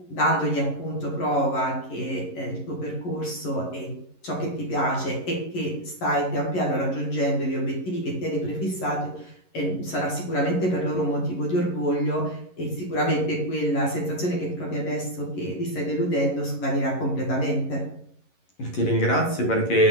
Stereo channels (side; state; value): right; late; 11 ms